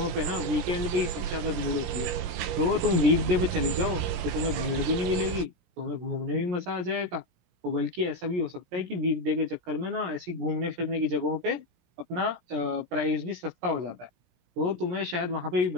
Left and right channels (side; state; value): left; late; 17 ms